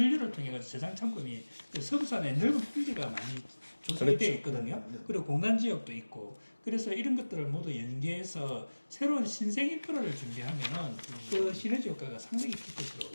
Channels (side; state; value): both; inverted; correlation -1.00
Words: 통해 가지고 저장 창고이 그 서부산에 넓은 평지가 많이 조성이 되어 있거든요. 네. 그리고 공간 지역도 있고 그래서 이런 것들을 모두 연계해서 새로운 신생 인프라를 준비하면은 그 시너지 효과가 상당히 클 것으로